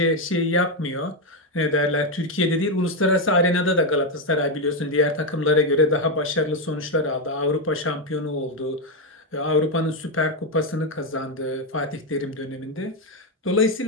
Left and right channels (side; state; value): both; normal; correlation 0.06